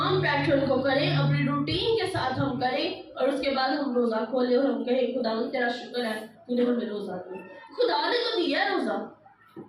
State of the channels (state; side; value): identical; both; correlation 1.00